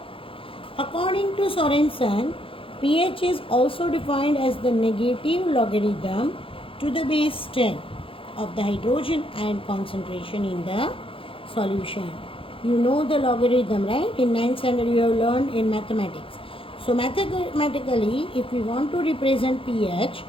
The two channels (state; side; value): late; right; 0.26 ms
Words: According to Sorensen, pH is also defined as the negative logarithm to the base 10 of the hydrogen ion concentration in the solution. You know the logarithm, right? In 9th standard you have learned in mathematics. So mathematically, if we want to represent pH,